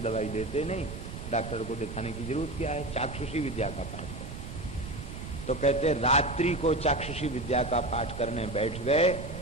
देते नहीं, डॉक्टर को दिखाने की जरूरत क्या है, चाक्षुषी विद्या का पाठ करें। तो कहते रात्रि को चाक्षुषी विद्या का पाठ करने बैठ गए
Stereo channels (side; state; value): right; noise; rumble, 9 dB below the sound